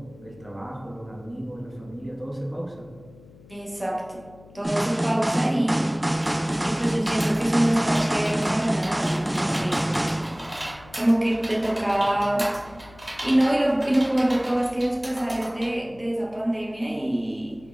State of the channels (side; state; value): left; noise; hum, 23 dB below the sound